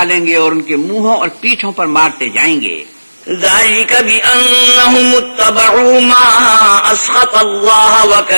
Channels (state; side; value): inverted; both; correlation -1.00